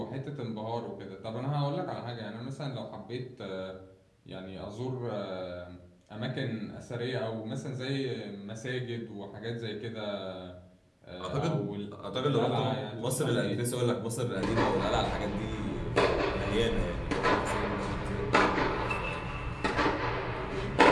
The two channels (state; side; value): identical; both; correlation 1.00